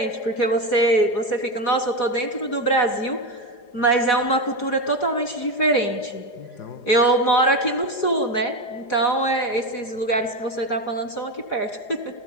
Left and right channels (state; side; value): late; right; 4.9 ms